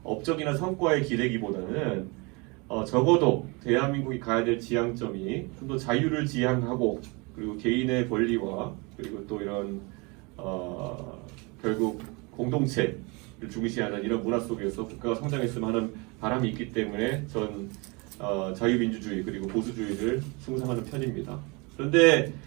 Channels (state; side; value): quieter; left; 28.5 dB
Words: 업적이나 성과에 기대기보다는 적어도 대한민국이 가야 될 지향점이 좀 더 자유를 지향하고 그리고 개인의 권리와 그리고 또 이런 결국 공동체를 중시하는 이런 문화 속에서 국가가 성장했으면 하는 바람이 있기 때문에 전 자유민주주의 그리고 보수주의를 숭상하는 편입니다. 그런데